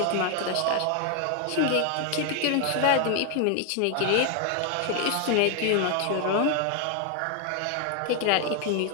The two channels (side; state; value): both; different; correlation 0.00